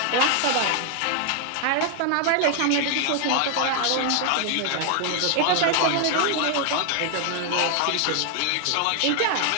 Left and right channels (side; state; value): both; different; correlation 0.00